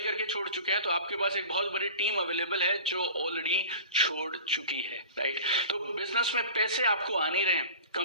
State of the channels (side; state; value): both; inverted; correlation -0.38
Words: छोड़ चुके हैं, तो आपके पास एक बहुत बड़ी टीम अवेलेबल है जो ऑलरेडी छोड़ चुकी है, राइट। तो बिजनेस में पैसे आपको आ नहीं रहे हैं,